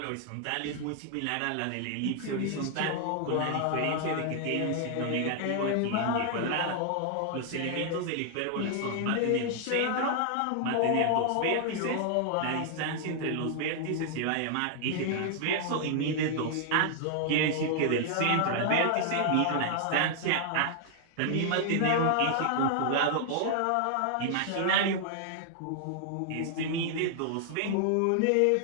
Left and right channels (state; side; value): different; both; correlation 0.00